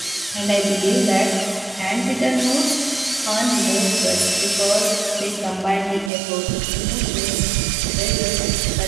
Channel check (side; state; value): left; drops out; at 6.1 s